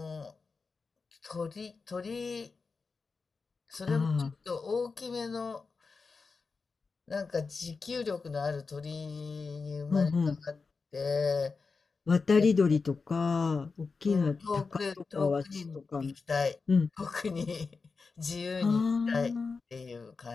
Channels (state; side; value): quieter; right; 4.6 dB